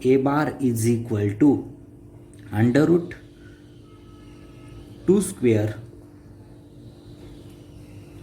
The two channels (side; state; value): both; identical; correlation 1.00